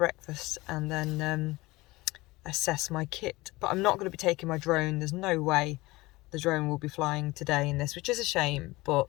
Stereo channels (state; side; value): quieter; right; 20.9 dB